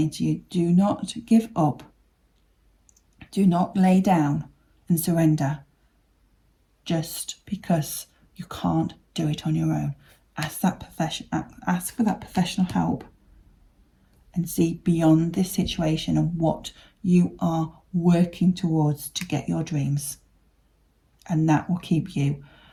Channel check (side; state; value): both; identical; correlation 1.00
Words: to you, do not give up. Do not lay down and surrender just because you can't do it on your own. Ask for that professional help, and see beyond this situation and what you are working towards to get your dreams. And that will keep you